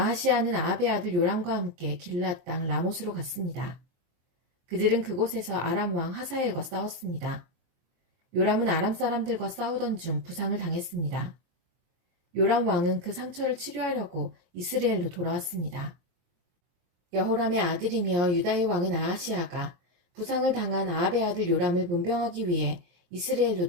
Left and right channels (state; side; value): late; left; 23 ms